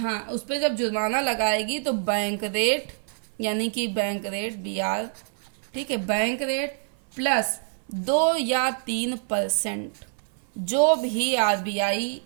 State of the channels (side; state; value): left; silent; 55 dB below the other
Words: उस पर जब जुर्माना लगाएगी तो बैंक रेट, यानी कि बैंक रेट बीआर, ठीक है, बैंक रेट प्लस 2 या 3% जो भी आरबीआई